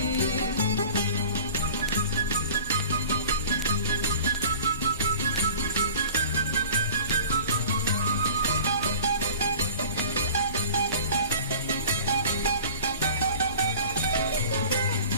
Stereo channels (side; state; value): both; inverted; correlation -0.42